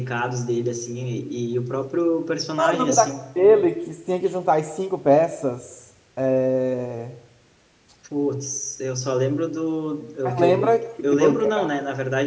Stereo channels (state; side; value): identical; both; correlation 1.00